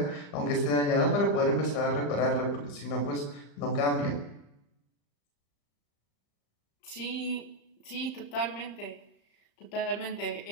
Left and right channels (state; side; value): late; right; 35 ms